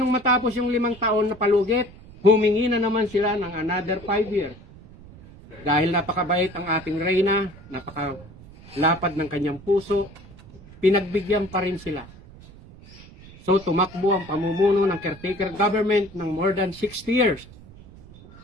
matapos yung 5 taon na palugit? Humingi na naman sila ng another 5 years. Dahil napakabait ang ating reyna, napakalapad ng kanyang puso, pinagbigyan pa rin sila. So tumakbo ang pamumuno ng caretaker government ng more than 60 years.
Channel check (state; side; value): noise; right; rumble, 20 dB below the sound